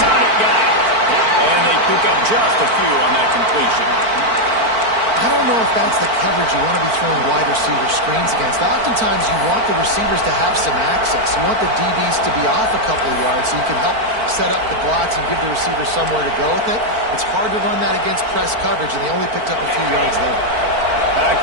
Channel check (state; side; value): late; left; 4.5 ms